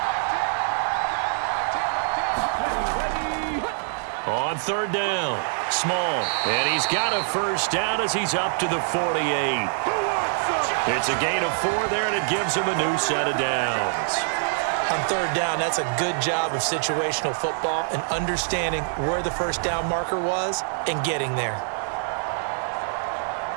On 3rd down, Small, and he's got a first down as he's up to the 48. It's a gain of 4 there, and it gives him a new set of downs. On 3rd down, that's a good job of situational football and understanding where the first down marker was and getting there.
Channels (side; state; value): left; silent; digital silence